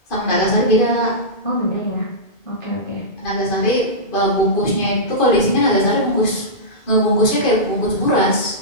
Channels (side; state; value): right; late; 2.4 ms